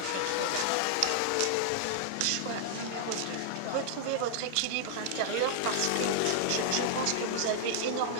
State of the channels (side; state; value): both; different; correlation -0.01